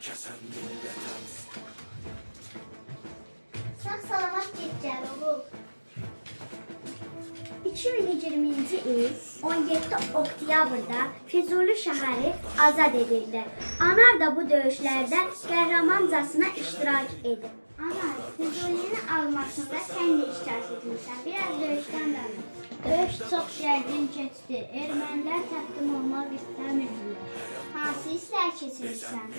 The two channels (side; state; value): both; inverted; correlation -1.00